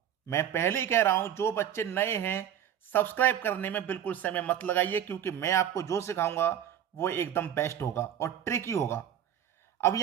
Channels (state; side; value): quieter; left; 10.0 dB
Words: मैं पहले ही कह रहा हूं, जो बच्चे नए हैं सब्सक्राइब करने में बिल्कुल समय मत लगाइए, क्योंकि मैं आपको जो सिखाऊंगा वो एकदम बेस्ट होगा और ट्रिकी होगा। अब